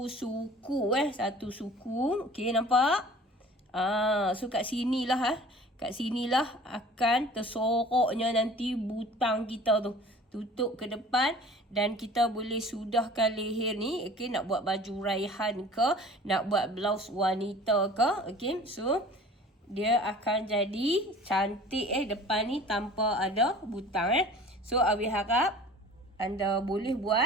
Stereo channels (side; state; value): both; normal; correlation 0.46